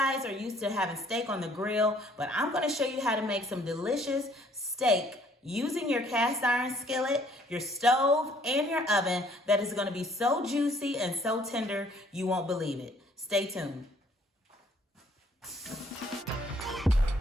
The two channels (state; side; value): normal; both; correlation 0.61